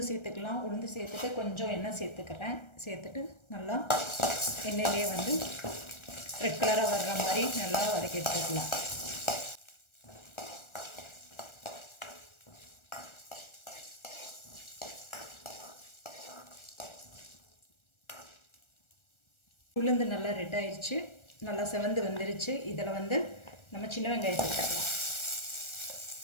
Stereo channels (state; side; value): late; right; 1.4 ms